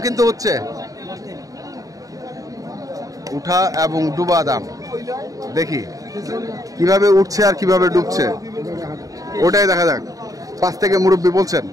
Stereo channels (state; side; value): late; left; 0.17 ms